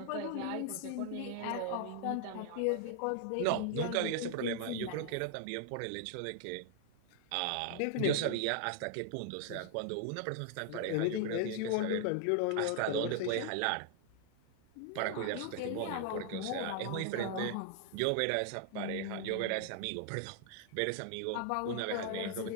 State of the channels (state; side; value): different; both; correlation 0.00